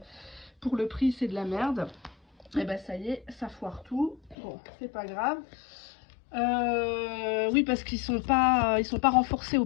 Pour le prix, c'est de la merde. Et ben ça y est, ça foire tout. Bon, c'est pas grave. Oui, parce qu'ils sont pas renforcés aux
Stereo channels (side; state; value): right; drops out; at 4.4 s